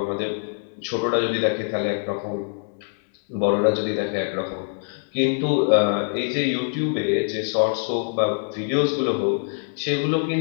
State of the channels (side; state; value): right; silent; 63 dB below the other